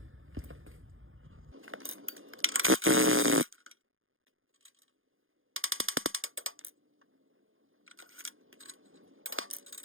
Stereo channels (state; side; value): late; left; 0.59 ms